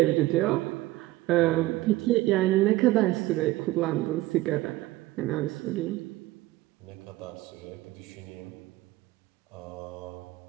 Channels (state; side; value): quieter; left; 17.8 dB